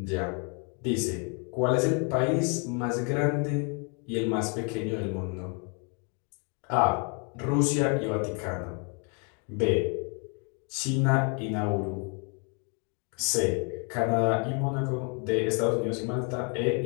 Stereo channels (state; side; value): quieter; right; 37.2 dB